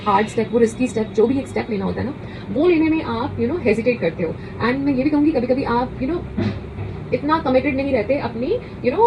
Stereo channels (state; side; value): identical; both; correlation 1.00